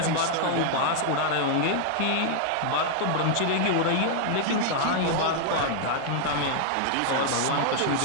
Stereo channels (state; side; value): different; both; correlation -0.01